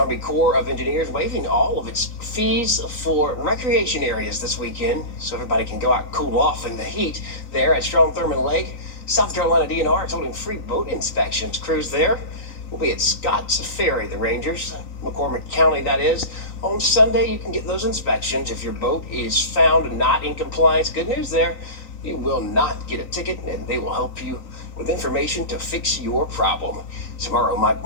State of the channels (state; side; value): late; right; 3.9 ms